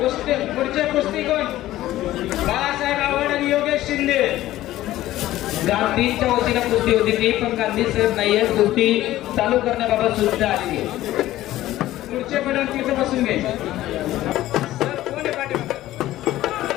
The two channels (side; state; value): right; quieter; 15.0 dB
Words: पुढचे कुस्ती कोण. बाळासाहेब आव्हाड आणि योगेश शिंदे. गांधींच्या वतीनं कुस्ती होती ती पण गांधी साहेब नाहीये. कुस्ती चालू करण्याबाबत सूचना आली आहे. पुढचे पैलवान तिथे बसून घे. सर कोण आहे पाठीमागे.